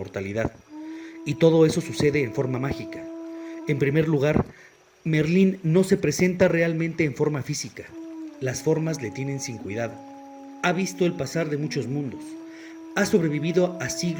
y todo eso sucede en forma mágica. En primer lugar, Merlín no se presenta realmente en forma física. Las formas le tienen sin cuidado. Ha visto el pasar de muchos mundos. Ha sobrevivido a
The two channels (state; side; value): identical; both; correlation 1.00